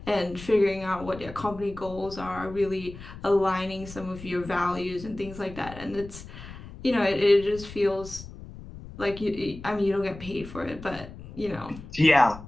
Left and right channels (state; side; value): noise; left; rumble, 14 dB below the sound